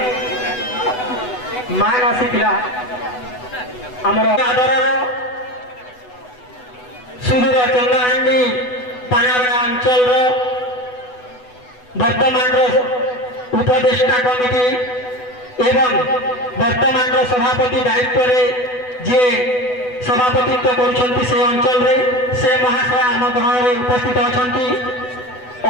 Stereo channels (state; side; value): late; right; 8.0 ms